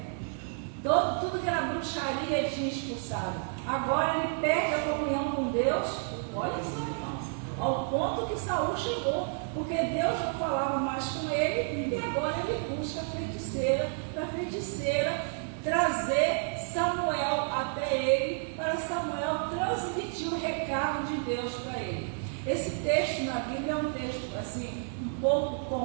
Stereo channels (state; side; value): silent; left; 57 dB below the other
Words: Tudo que era bruxaria ele tinha expulsado. Agora ele perde a comunhão com Deus. Olha só, irmãos, ao ponto que Saul chegou, porque Deus não falava mais com ele, e agora ele busca a feiticeira, para a feiticeira trazer Samuel até ele, para Samuel transmitir o recado de Deus para ele. Esse texto na Bíblia é um texto assim, um pouco